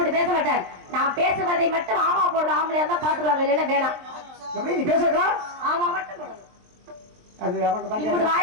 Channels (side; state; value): left; late; 23 ms